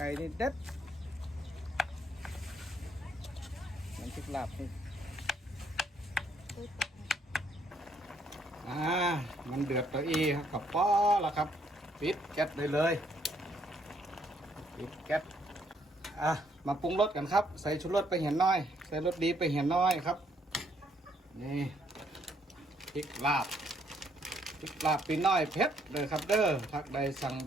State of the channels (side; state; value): both; normal; correlation 0.70